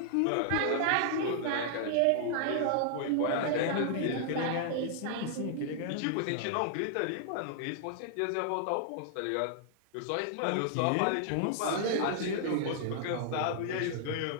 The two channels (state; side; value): different; both; correlation -0.01